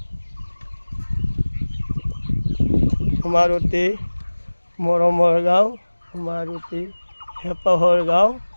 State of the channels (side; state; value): both; inverted; correlation -1.00